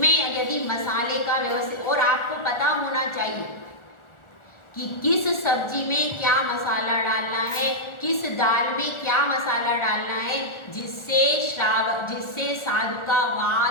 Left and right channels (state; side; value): late; right; 1.4 ms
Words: यदि मसाले का व्यवस्थित, और आपको पता होना चाहिए कि किस सब्जी में क्या मसाला डालना है, किस दाल में क्या मसाला डालना है, जिससे साधु का